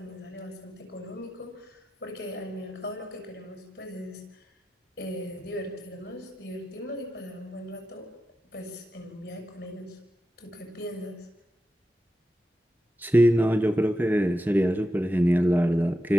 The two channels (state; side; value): normal; both; correlation 0.90